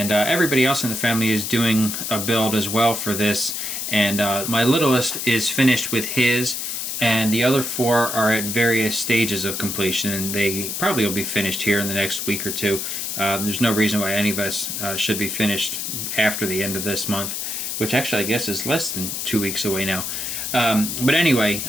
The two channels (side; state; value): left; noise; hiss, 4 dB below the sound